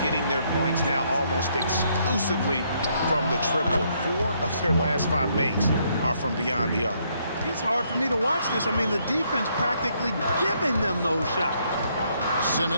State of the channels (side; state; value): both; inverted; correlation -0.71